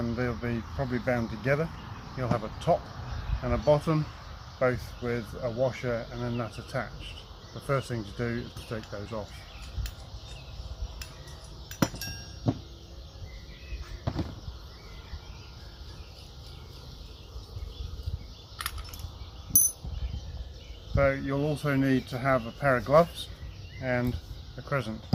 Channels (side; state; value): both; identical; correlation 1.00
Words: they'll be probably bound together. You'll have a top and a bottom, both with a washer and a nut attached. The first thing to do is to take those off. So you'll also need to have a pair of gloves and a crescent